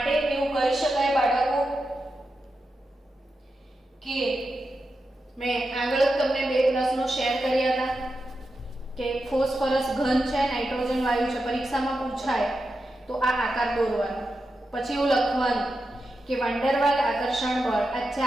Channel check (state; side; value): normal; both; correlation 0.89